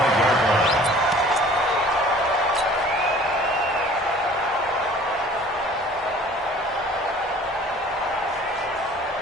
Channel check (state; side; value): normal; both; correlation 0.49